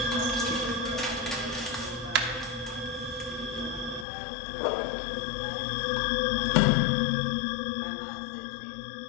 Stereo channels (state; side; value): drops out; right; at 4.0 s